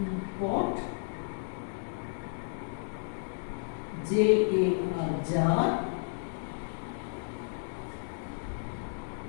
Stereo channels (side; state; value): right; silent; digital silence